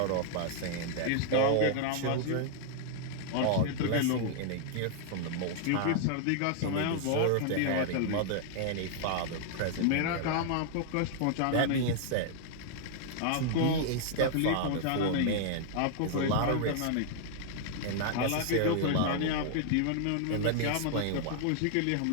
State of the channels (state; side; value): different; both; correlation -0.01